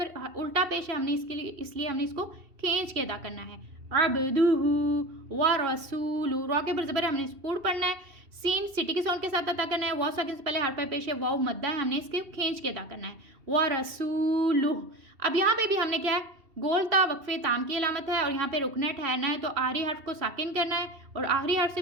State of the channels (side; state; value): left; late; 2.7 ms